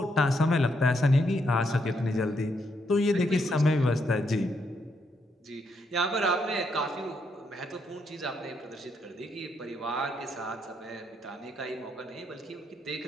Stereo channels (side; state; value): both; normal; correlation 0.77